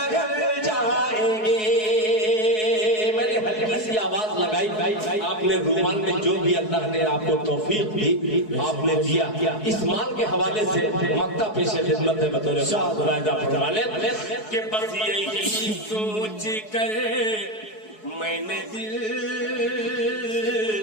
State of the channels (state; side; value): late; right; 4.7 ms